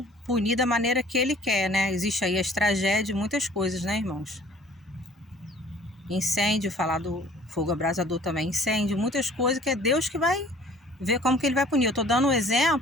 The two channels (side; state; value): both; normal; correlation 0.53